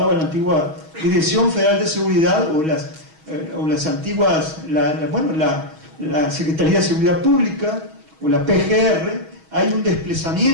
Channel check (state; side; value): late; left; 6.3 ms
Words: la antigua Dirección Federal de Seguridad o las antiguas, la Secretaría de Seguridad Pública o la PGR. Hay un